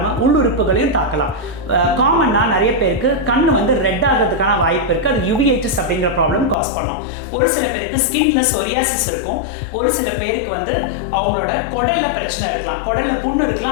உள்ளுறுப்புகளையும் தாக்கலாம். காமனாக நிறைய பேருக்கு கண் வந்து ரெட் ஆகிறதுக்கான வாய்ப்பு இருக்குது. அது யுவிஐட்டிஸ் அப்படிங்கிற ப்ராப்ளம் காஸ் பண்ணும். ஒரு சில பேருக்கு ஸ்கின்ல சொரியாசிஸ் இருக்கும். ஒரு சில பேருக்கு வந்து அவங்களோட குடல்ல பிரச்சனை இருக்கலாம், குடல்ல புண்ணு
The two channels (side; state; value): right; drops out; at 6.6 s